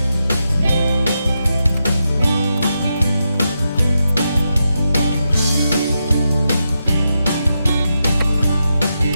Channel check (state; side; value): inverted; both; correlation -0.86